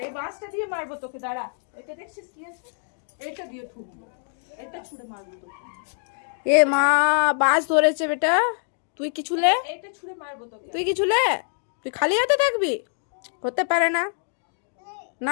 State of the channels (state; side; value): silent; right; 62 dB below the other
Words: এই বাঁশটা দিয়ে মারবো তোকে দাঁড়া এটা দেখছিস কি আছে এটা দিয়ে ঠুকবো এটা ছুঁড়ে মারবো তোকে এ মা বাস ধরেছে বেটা তুই কি ছুলে এটা ছুঁড়ে মারবো তোকে তুই কি ছুলে তুই খালি হাতে থাকবি হতে পারে না